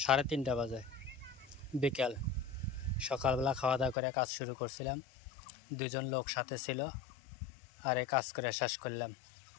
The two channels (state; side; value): drops out; right; at 4.0 s